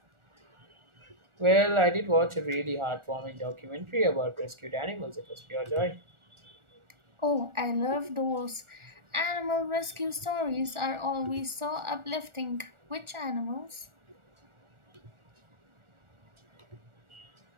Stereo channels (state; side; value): late; left; 1.4 ms